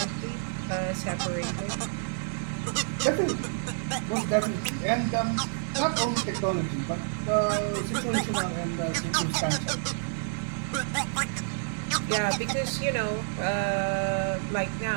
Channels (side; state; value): left; silent; 59 dB below the other